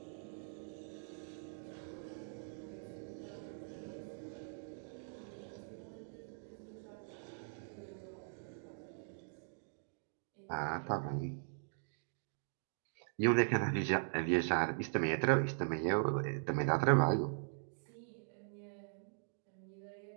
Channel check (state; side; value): silent; left; digital silence